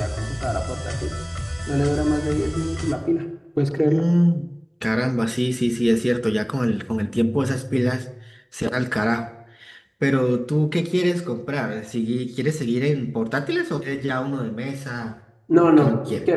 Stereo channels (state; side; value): identical; both; correlation 1.00